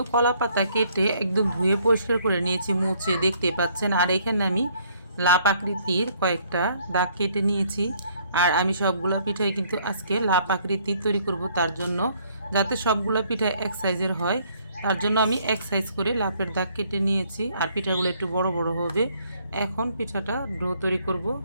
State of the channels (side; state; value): both; inverted; correlation -0.64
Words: কলা পাতা কেটে একদম ধুয়ে পরিষ্কার করে নিয়েছি, মুছে দেখতে পাচ্ছেন। আর এখানে আমি লাপ আকৃতির কয়েকটা দাগ কেটে নিয়েছি। আর আমি সবগুলো পিঠাই কিন্তু আজকে লাপ আকৃতির তৈরি করব, তার জন্য যাতে সবগুলো পিঠা এক সাইজের হয় তার জন্য আমি এক সাইজ করে লাপের দাগ কেটে নিয়েছি। আর পিঠাগুলো একটু বড় বড় হবে। এখন পিঠাটা ডো তৈরি করব।